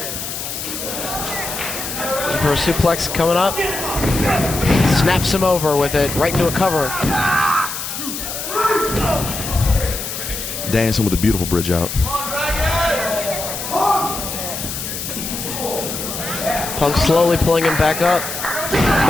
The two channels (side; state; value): left; noise; hiss, 6 dB below the sound